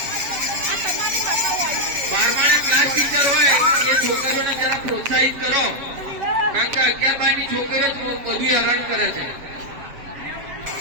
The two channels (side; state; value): left; late; 7.7 ms